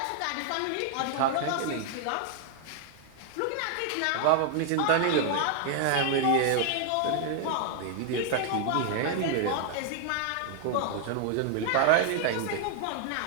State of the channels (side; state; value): both; different; correlation 0.00